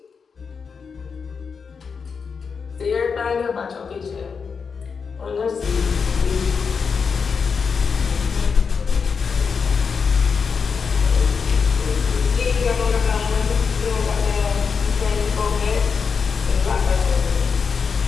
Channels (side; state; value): right; quieter; 5.7 dB